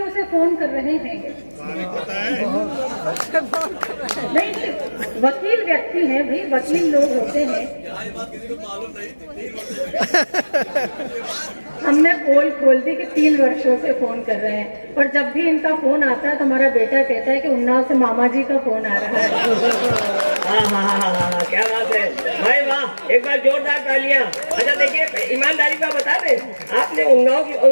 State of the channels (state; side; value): inverted; both; correlation -1.00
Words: से फोन कर रहे हैं। नहीं, वकील व्यक्ति हैं भाई, वकील लोग होते हैं। हमने पोल खोल दी कि 3 वर्षों से फोन कर रहे हैं, और जब भी इनका फोन आता है तो हमारा बेटा कहता है कि उन्नाव से मामा जी का फोन आ रहा है। क्या बात है भाई, वाह, एक बार जोरदार तालियां। अच्छा देखिए, ईमानदारी का बता दें, आपने